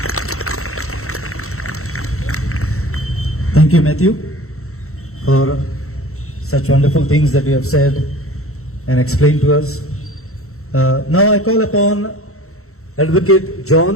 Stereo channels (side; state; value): right; late; 0.63 ms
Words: Thank you, Matthew, for such wonderful things that you have said and explain to us. Now I call upon Advocate